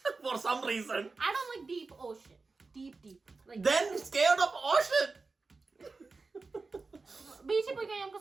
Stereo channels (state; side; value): quieter; left; 4.0 dB